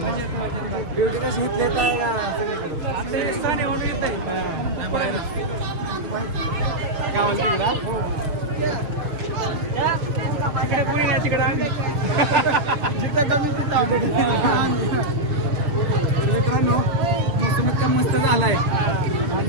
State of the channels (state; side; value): late; left; 6.7 ms